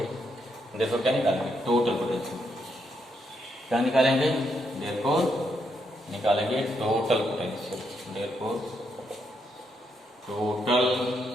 देखो क्या निकालेंगे, टोटल पोटेंशियल क्या निकालेंगे, देयरफॉर निकालेंगे total potential, therefore total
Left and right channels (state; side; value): normal; both; correlation 0.78